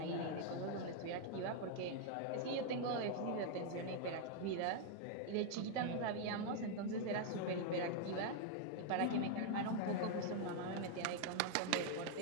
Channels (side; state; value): both; different; correlation 0.00